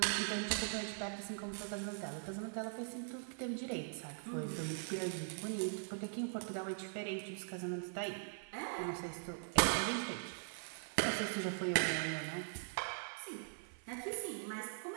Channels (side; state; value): left; silent; 50 dB below the other